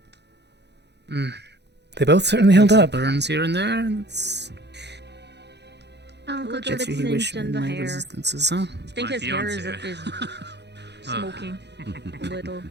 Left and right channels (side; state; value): left; late; 0.50 ms